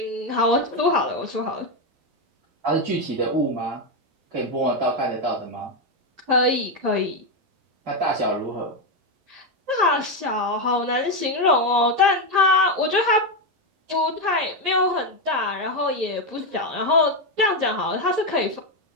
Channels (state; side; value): late; left; 11 ms